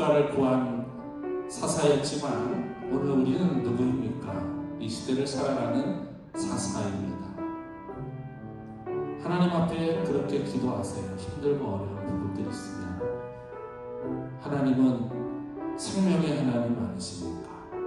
구한 사사였지만 오늘 우리는 누구입니까? 이 시대를 살아가는 사사입니다. 하나님 앞에 그렇게 기도하세요. 힘들고 어려운 부분들이 있으면 하나님은 생명의 하나님 아니십니까?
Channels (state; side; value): identical; both; correlation 1.00